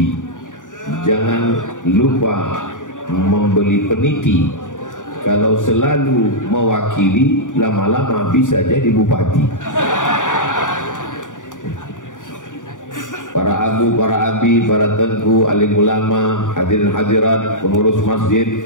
jangan lupa membeli peniti. Kalau selalu mewakili, lama-lama bisa jadi bupati. Para abu, para abi, para tengku, alim ulama, hadirin hadirat, pengurus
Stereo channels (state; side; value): late; right; 0.87 ms